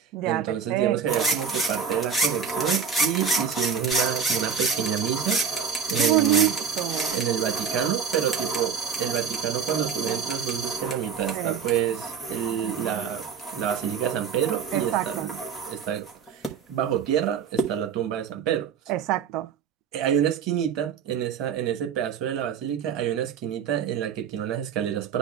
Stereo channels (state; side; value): quieter; left; 7.0 dB